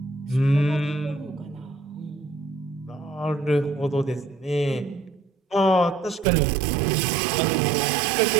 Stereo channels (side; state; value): left; drops out; at 6.2 s